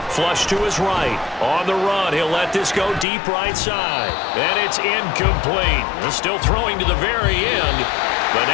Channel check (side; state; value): right; drops out; at 3.1 s